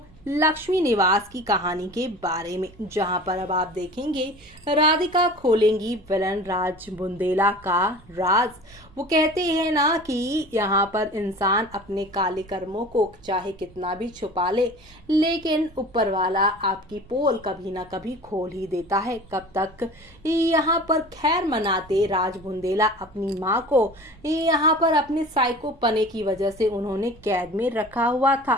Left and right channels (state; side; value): noise; right; rumble, 26 dB below the sound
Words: लक्ष्मी निवास की कहानी के बारे में, जहां पर अब आप देखेंगे राधिका खोलेंगी विलन राज बुंदेला का राज। वो कहते हैं ना कि यहाँ पर इंसान अपने काले कर्मों को चाहे कितना भी छुपा ले, लेकिन ऊपर वाला आपकी पोल कभी ना कभी खोल ही देता है। कब तक यहाँ पर खैर मनाते राज बुंदेला अपनी माँ को यहाँ पर अपने साइको पने की वजह से उन्होंने कैद में रखा हुआ था,